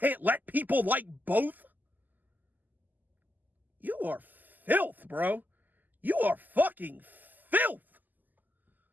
let people like both? You are filth, bro. You are fucking filth.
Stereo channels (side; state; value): left; late; 0.085 ms